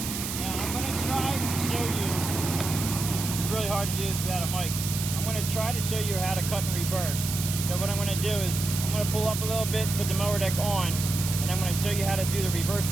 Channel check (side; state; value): right; noise; hiss, 5 dB below the sound